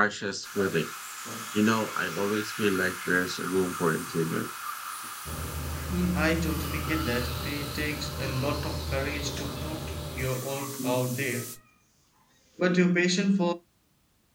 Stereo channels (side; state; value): both; identical; correlation 1.00